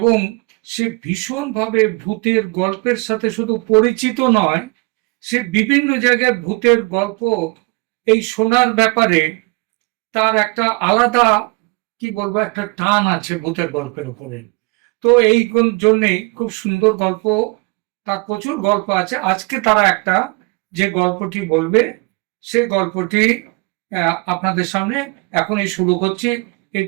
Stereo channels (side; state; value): left; quieter; 28.6 dB